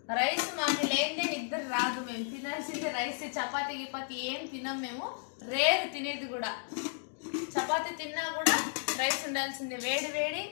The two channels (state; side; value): silent; right; digital silence